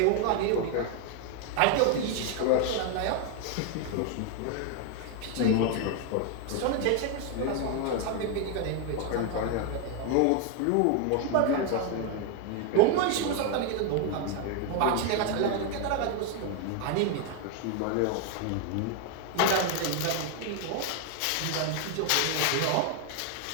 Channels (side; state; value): both; different; correlation 0.01